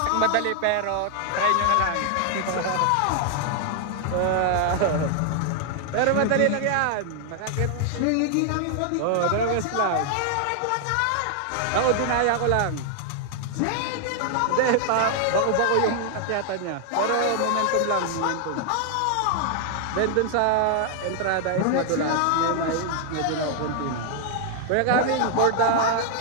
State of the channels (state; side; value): different; both; correlation 0.00